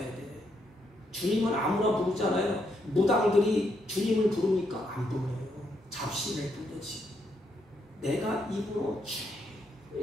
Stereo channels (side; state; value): both; normal; correlation 0.77